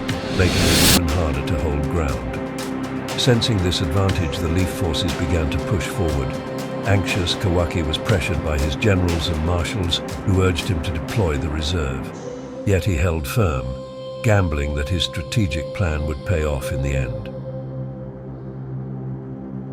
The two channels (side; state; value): both; identical; correlation 1.00